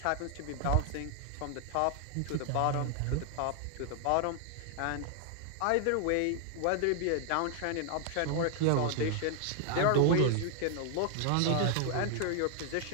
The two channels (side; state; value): both; different; correlation 0.00